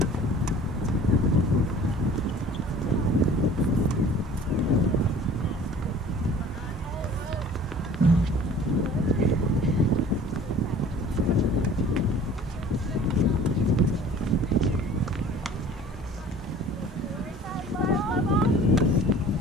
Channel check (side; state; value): both; normal; correlation 0.47